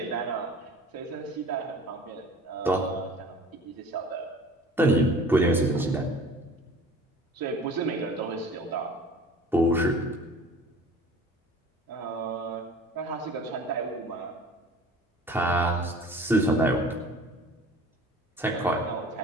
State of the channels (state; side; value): normal; both; correlation 0.45